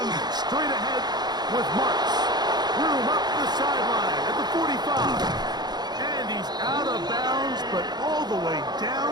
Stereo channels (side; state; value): left; late; 0.20 ms